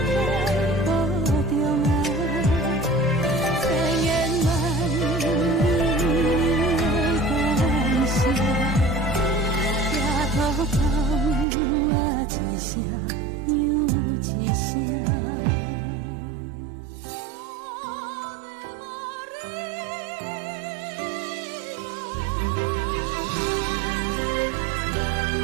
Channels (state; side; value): drops out; left; at 11.5 s